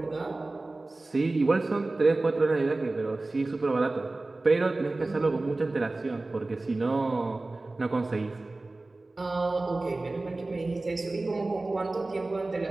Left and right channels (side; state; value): left; quieter; 3.1 dB